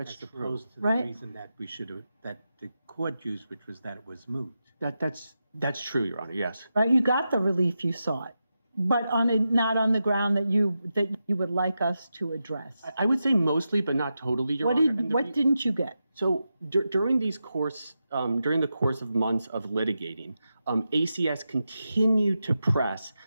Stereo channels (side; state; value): both; inverted; correlation -0.89